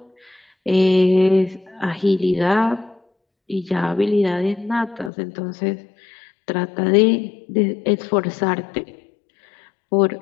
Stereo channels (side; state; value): right; drops out; at 5.1 s